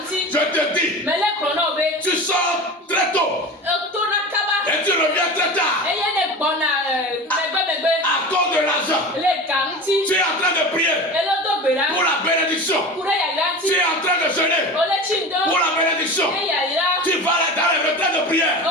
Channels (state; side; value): normal; both; correlation 0.32